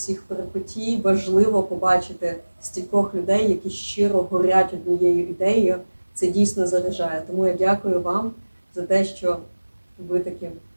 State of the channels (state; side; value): inverted; both; correlation -1.00